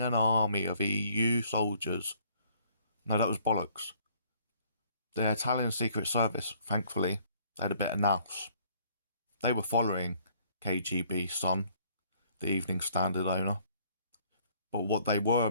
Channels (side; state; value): both; inverted; correlation -0.62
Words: an army of EU soldiers? No, that was bollocks. The Italian Secret Service, thankfully, they had a bit of nous. They were following KGB's son, the Evening Standard owner. But what they were